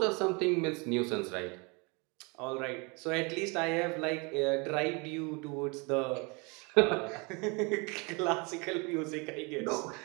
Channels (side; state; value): left; quieter; 30.1 dB